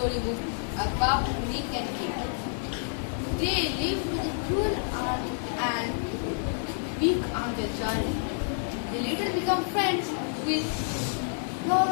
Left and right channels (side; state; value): right; silent; digital silence